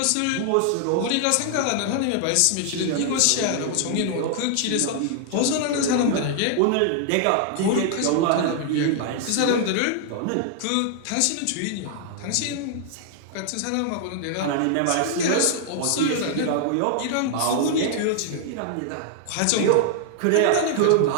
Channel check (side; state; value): both; different; correlation -0.01